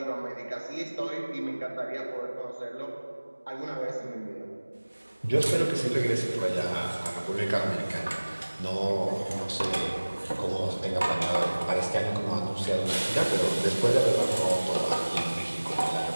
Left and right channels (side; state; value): both; inverted; correlation -1.00